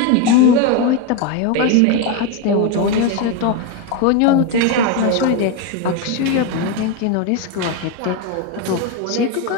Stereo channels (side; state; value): both; different; correlation 0.03